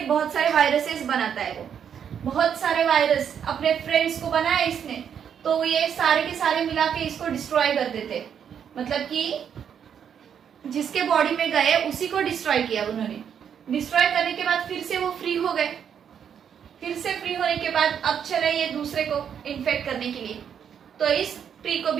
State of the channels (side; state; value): left; quieter; 8.2 dB